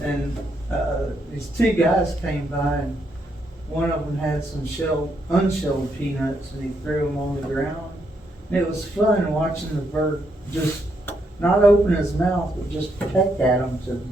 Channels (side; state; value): both; normal; correlation 0.77